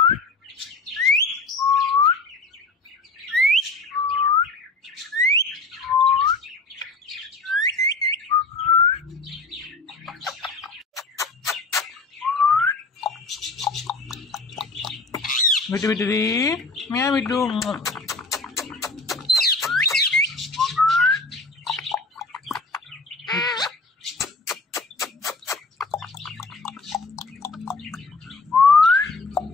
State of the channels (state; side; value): quieter; right; 3.5 dB